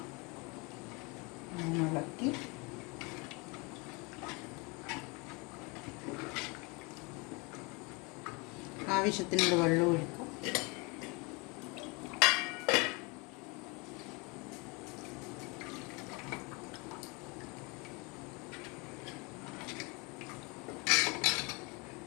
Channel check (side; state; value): right; quieter; 28.7 dB